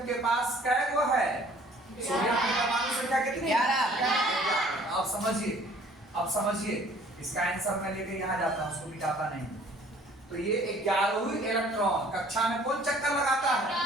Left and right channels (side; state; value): both; normal; correlation 0.55